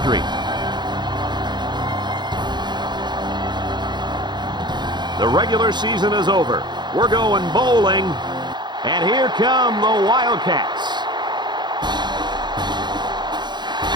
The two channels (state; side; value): late; left; 0.21 ms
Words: The regular season is over. We're going bowling, and here come the Wildcats.